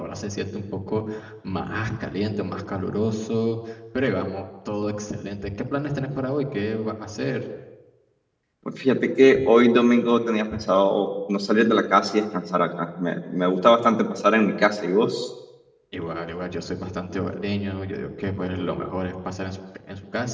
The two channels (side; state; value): both; identical; correlation 1.00